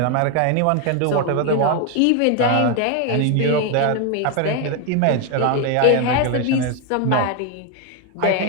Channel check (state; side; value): different; both; correlation 0.01